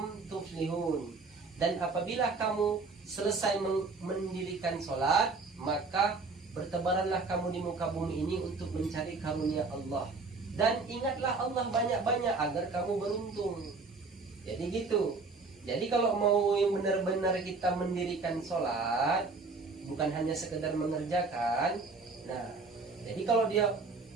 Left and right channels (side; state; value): left; quieter; 4.0 dB